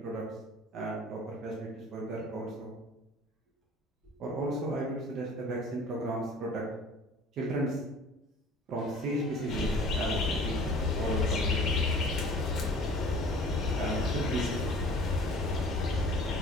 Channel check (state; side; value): normal; both; correlation 0.47